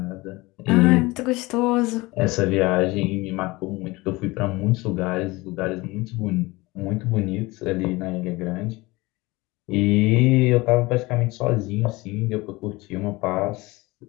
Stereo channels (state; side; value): quieter; right; 22.1 dB